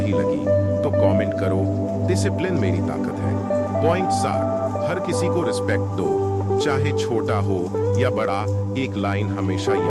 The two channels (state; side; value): identical; both; correlation 1.00